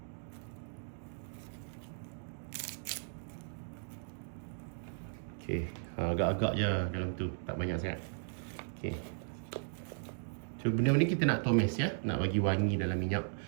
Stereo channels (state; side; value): silent; left; digital silence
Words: Okey, agak-agak je dalam tu, tak banyak sangat. Okey. So benda ni kita nak tumis ya, nak bagi wangi dalam minyak